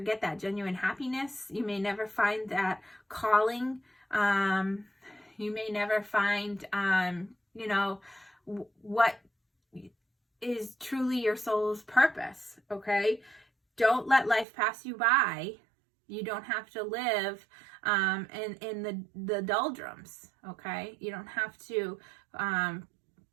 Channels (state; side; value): drops out; left; at 14.5 s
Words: that genuine happiness. You may never find that calling. You may never find, what is truly your soul's purpose, okay? Don't let life pass you by. You don't have to live in the doldrums, okay? You don't have to